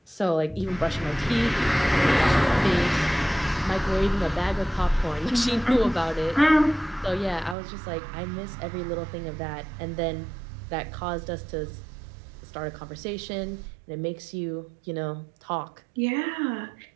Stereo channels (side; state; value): left; drops out; at 7.6 s